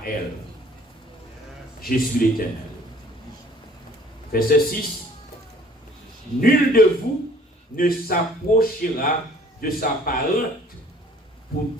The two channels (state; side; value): normal; both; correlation 0.55